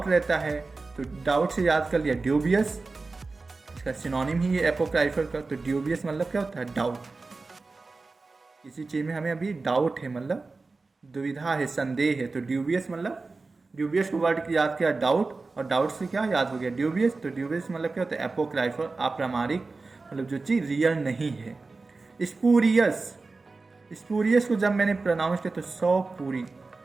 रहता है। तो डाउट से याद कर लिया ड्यूबियस, इसका सिनोनिम ही है एपोक्राइफल का। तो ड्यूबियस मतलब क्या होता है? डाउट। किसी चीज़ में हमें अभी डाउट है, मतलब दुविधा है, संदेह है, तो ड्यूबियस मतलब, ड्यूबियस को वर्ड याद किया डाउट, और डाउट से क्या याद हो गया? ड्यूबियस। तो ड्यूबियस मतलब क्या होता है? एपोक्राइफल, अप्रामाणिक, मतलब जो चीज़ रियल नहीं है। स्पूरियस, स्पूरियस को जब मैंने प्रोनाउंस किया तो 100 पूरी,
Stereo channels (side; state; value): left; quieter; 3.8 dB